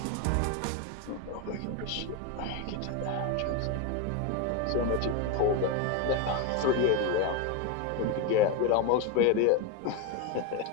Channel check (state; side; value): different; both; correlation 0.02